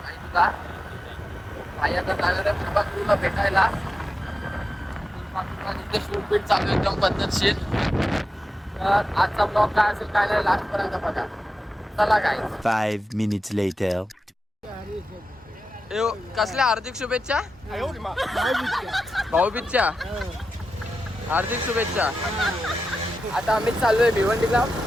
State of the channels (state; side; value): normal; both; correlation 0.91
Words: भाई तुला. भाई आता जाणार आहे फुलपाखरूला भेटायला. फुलपाखरूला तिथे शूट चालू आहे एकदम पद्धतशीर. तर आजचा ब्लॉग काय असेल काय नाही लास्टपर्यंत बघा. चला गाईज. 5 minutes later. कसल्या हार्दिक शुभेच्छा भाऊबीजच्या हार्दिक शुभेच्छा. आता आम्ही चाललोय भिवंडीला